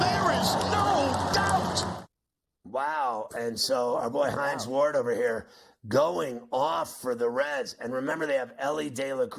there is no doubt. Wow. And so our boy Hines Ward over here going off for the Reds. And remember, they have Ellie De La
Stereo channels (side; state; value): both; identical; correlation 1.00